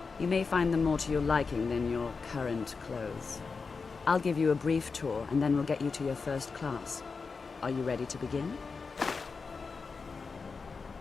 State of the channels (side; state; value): right; quieter; 4.8 dB